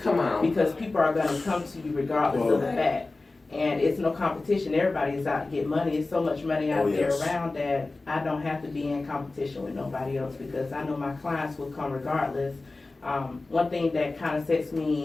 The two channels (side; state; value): right; quieter; 3.3 dB